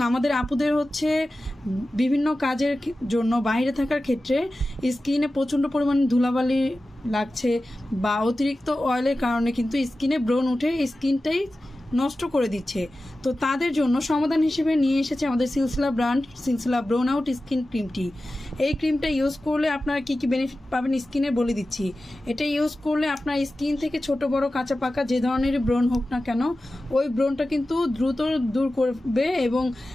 আমাদের আপুদের হচ্ছে বিভিন্ন কাজের জন্য বাইরে থাকার ক্ষেত্রে স্কিনে প্রচণ্ড পরিমাণে ধুলাবালি লাগছে বা অতিরিক্ত অয়েলের কারণে কিন্তু স্কিনে ব্রণ উঠে স্কিনটাই নষ্ট করে দিচ্ছে। তো তাদের জন্য সমাধান হিসেবে নিয়ে এসেছে আমাদের সিলসিলা ব্র্যান্ড সিলসিলা ব্রোন আউট স্কিন ক্রিমটি। এই ক্রিমটা ইউজ করলে আপনারা কী কী বেনিফিট পাবেন স্কিনে বলে দিচ্ছি। এটা ইউজ করলে আপনার স্কিন থেকে ছোট বড় কাঁচা পাকা যে ধরনের ব্রণ হোক না কেন, ওই ব্রণটা কিন্তু দ্রুত দূর করবে এবং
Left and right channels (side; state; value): both; normal; correlation 0.95